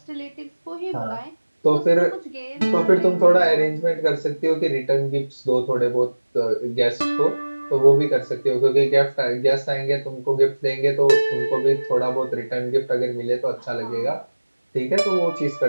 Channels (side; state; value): both; inverted; correlation -1.00